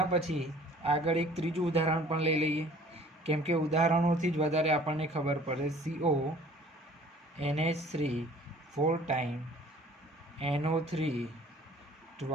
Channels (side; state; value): both; normal; correlation 0.52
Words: પછી આગળ એક ત્રીજું ઉદાહરણ પણ લઈ લઈએ, કેમ કે ઉદાહરણોથી જ વધારે આપણને ખબર પડે. CONH3 4 ટાઈમ NO3